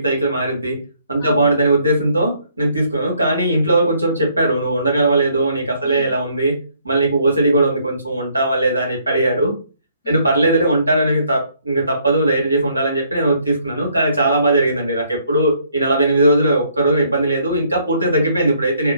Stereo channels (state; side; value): inverted; both; correlation -0.67